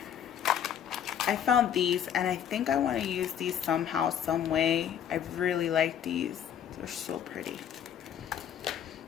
I found these and I think I want to use these somehow, some way. I really like these. They're so pretty.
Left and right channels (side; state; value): right; quieter; 9.3 dB